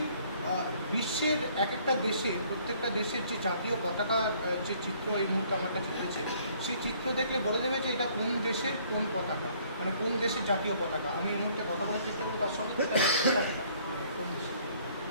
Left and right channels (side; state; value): both; inverted; correlation -0.61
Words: বিশ্বের এক একটা দেশে প্রত্যেকটা দেশের যে জাতীয় পতাকা যে চিত্র এই মুহূর্তে আমার কাছে রয়েছে, সেই চিত্র দেখলে বলে দেবে যে এটা কোন দেশের কোন পতাকা, মানে কোন দেশের জাতীয় পতাকা। আমি এই মুহূর্তে কথা বলার চেষ্টা করবো তার সঙ্গে। কোন দেশে?